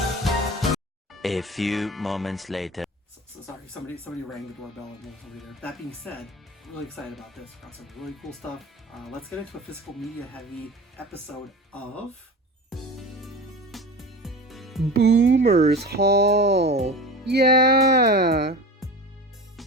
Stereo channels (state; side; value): normal; both; correlation 0.33